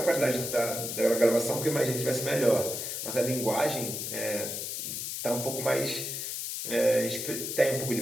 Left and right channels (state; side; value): noise; left; hiss, 4 dB below the sound